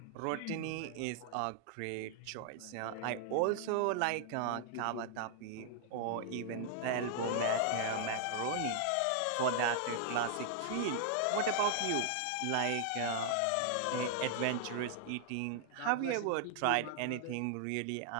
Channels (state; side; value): different; both; correlation 0.00